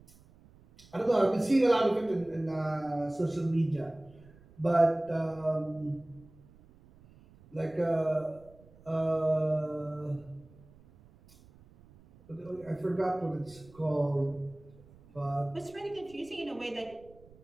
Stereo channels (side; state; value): right; noise; rumble, 25 dB below the sound